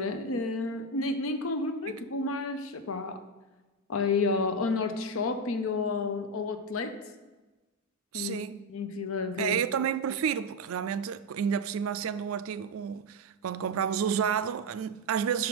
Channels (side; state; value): both; normal; correlation 0.07